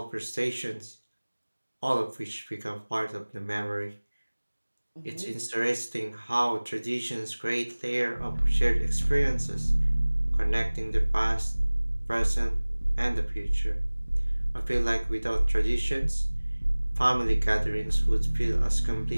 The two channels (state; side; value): inverted; both; correlation -1.00